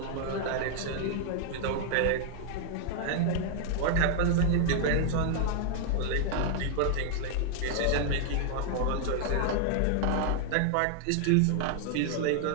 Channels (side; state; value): both; different; correlation 0.00